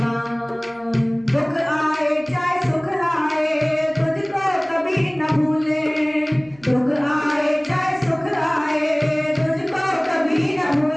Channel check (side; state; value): right; noise; hum, 29 dB below the sound